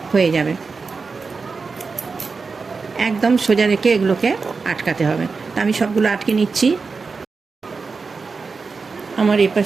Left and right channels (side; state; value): left; quieter; 4.6 dB